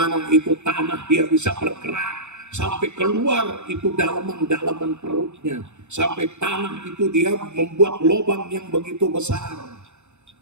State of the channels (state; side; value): late; left; 0.83 ms